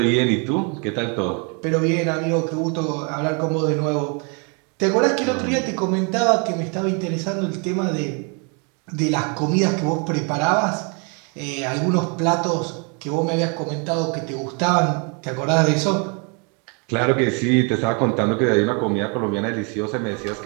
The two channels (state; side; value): quieter; left; 35.0 dB